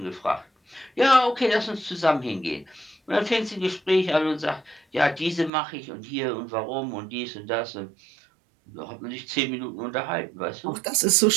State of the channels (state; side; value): drops out; left; at 5.5 s